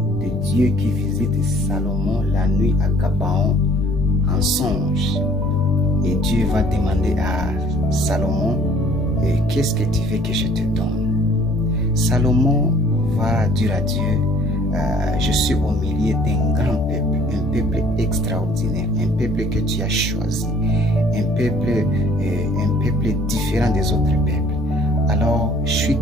de Dieu qui visite Salomon la nuit à Gabaon en songe. Et Dieu va demander à Salomon, qu'est-ce que tu veux que je te donne? Salomon va dire à Dieu, je suis au milieu d'un grand peuple, un peuple extraordinaire, un peuple que tu as choisi, un peuple différent des autres peuples. Alors, je suis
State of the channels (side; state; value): both; normal; correlation 0.55